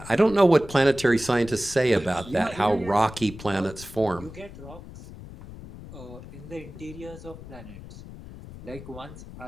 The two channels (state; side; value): noise; left; rumble, 15 dB below the sound